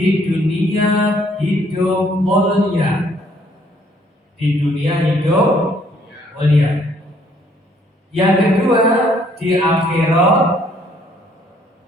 dunia hidup mulia. Di dunia hidup mulia. Yang kedua, di akhirat.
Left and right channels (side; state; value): both; normal; correlation 0.64